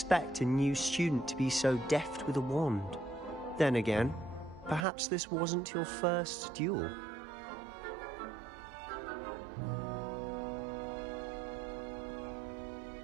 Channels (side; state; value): left; drops out; at 4.9 s